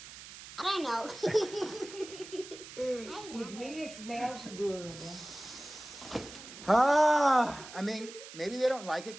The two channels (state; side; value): noise; right; hiss, 15 dB below the sound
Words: I don't know. It really smells good. I mean, maybe they don't like it